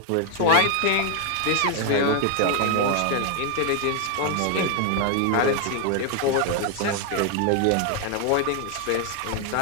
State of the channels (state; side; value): different; both; correlation 0.01